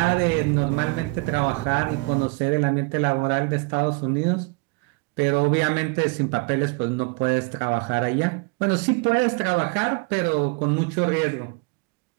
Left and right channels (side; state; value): left; quieter; 28.3 dB